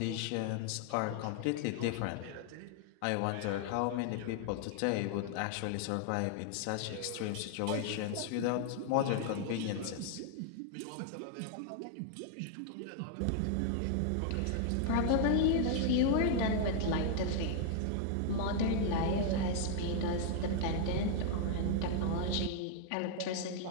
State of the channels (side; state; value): both; different; correlation 0.00